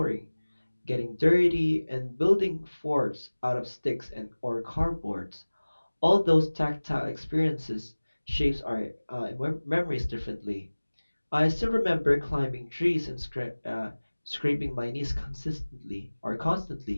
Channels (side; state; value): both; inverted; correlation -1.00